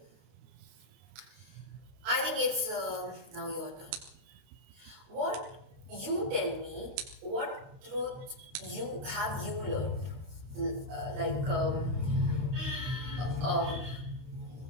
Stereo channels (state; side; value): late; left; 31 ms